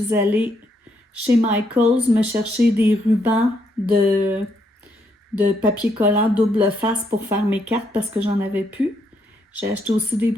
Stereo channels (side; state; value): both; normal; correlation 0.75